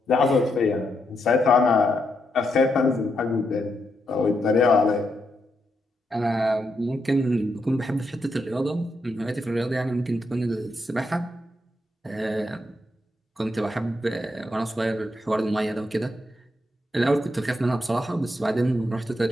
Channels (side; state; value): both; normal; correlation 0.81